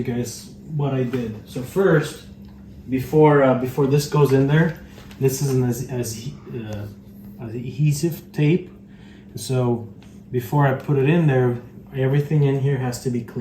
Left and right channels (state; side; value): identical; both; correlation 1.00